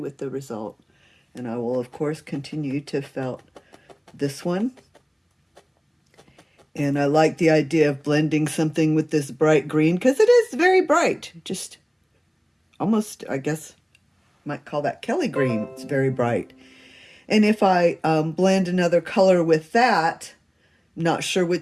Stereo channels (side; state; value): both; identical; correlation 1.00